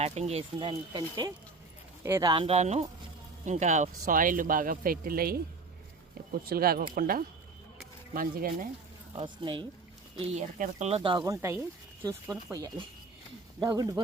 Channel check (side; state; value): left; quieter; 3.9 dB